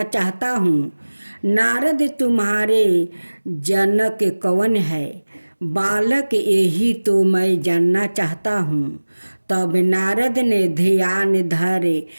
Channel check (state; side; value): inverted; both; correlation -1.00